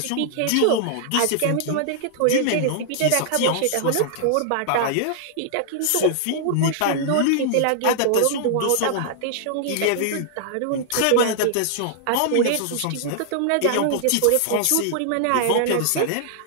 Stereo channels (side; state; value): both; different; correlation -0.01